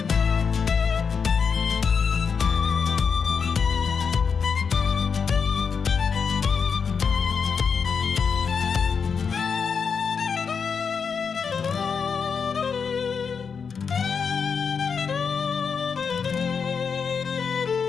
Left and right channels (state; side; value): quieter; right; 6.0 dB